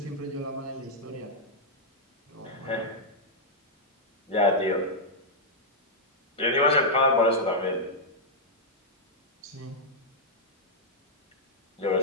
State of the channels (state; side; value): normal; both; correlation -0.06